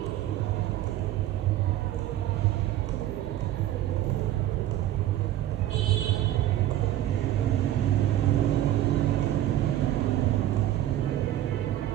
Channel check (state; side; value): quieter; left; 13.0 dB